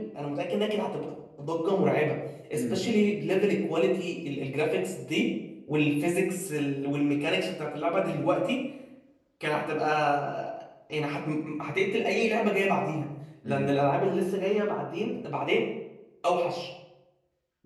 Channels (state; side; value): identical; both; correlation 1.00